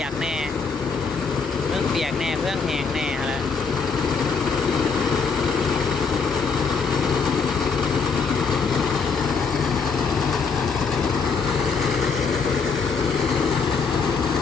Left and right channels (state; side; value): quieter; right; 5.1 dB